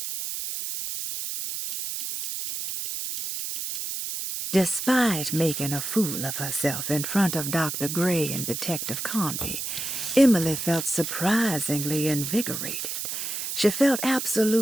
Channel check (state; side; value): noise; right; hiss, 4 dB below the sound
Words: Despite making a fool of herself in front of Dr. Gray and Detective Conby, Emily felt surprisingly invigorated. She felt